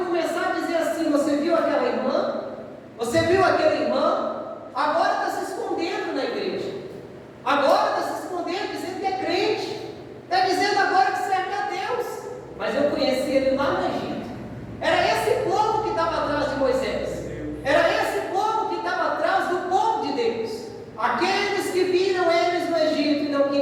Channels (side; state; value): both; identical; correlation 1.00